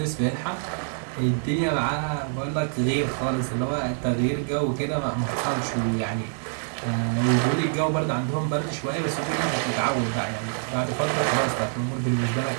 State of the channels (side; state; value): left; silent; 61 dB below the other